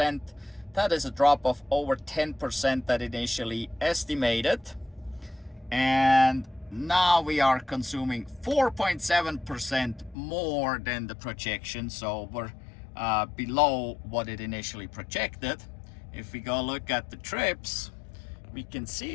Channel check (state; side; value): drops out; right; at 10.2 s